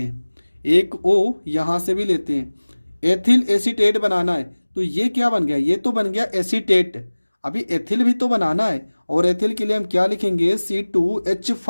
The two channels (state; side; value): inverted; both; correlation -1.00